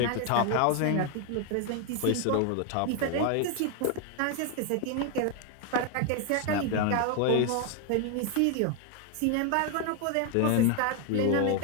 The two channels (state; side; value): different; both; correlation 0.01